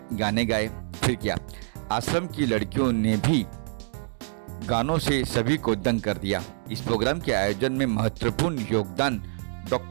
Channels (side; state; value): left; silent; digital silence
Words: गाने गाए। फिर क्या, आश्रम की लड़कियों ने भी गानों से सभी को दंग कर दिया। इस प्रोग्राम के आयोजन में महत्वपूर्ण योगदान